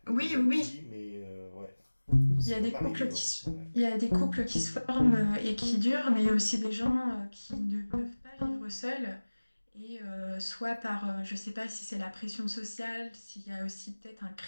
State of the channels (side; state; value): both; inverted; correlation -1.00